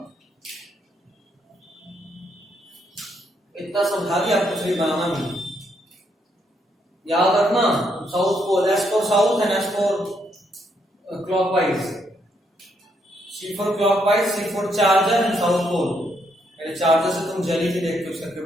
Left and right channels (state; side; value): normal; both; correlation 0.75